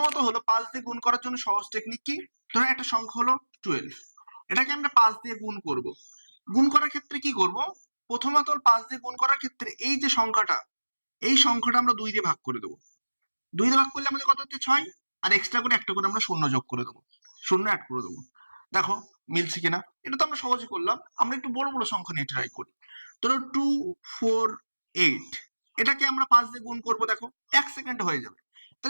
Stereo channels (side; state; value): both; inverted; correlation -1.00